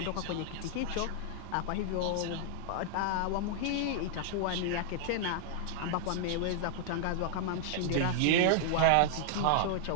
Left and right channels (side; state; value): both; different; correlation -0.01